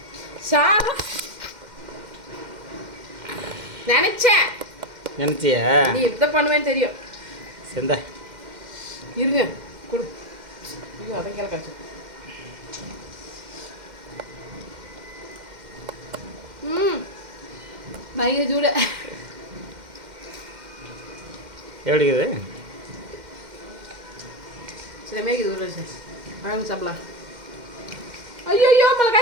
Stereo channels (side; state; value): left; late; 2.1 ms